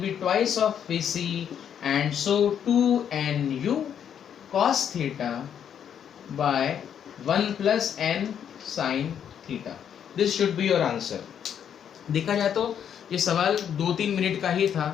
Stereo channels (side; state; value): right; quieter; 8.7 dB